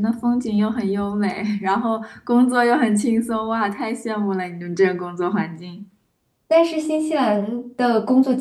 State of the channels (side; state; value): both; identical; correlation 1.00